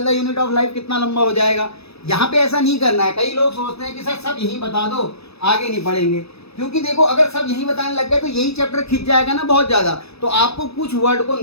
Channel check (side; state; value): right; late; 0.79 ms